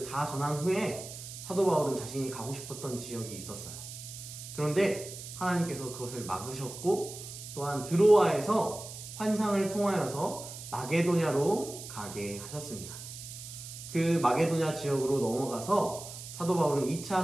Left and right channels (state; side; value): noise; right; hiss, 12 dB below the sound